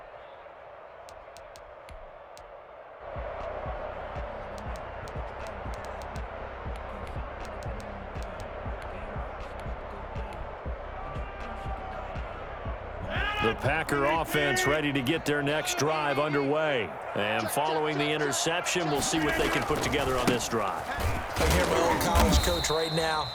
The Packer offense ready to get their next drive underway. And following the interception, we'll see what they can put together on this drive. I hear my old college coach right now.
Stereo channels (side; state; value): both; identical; correlation 1.00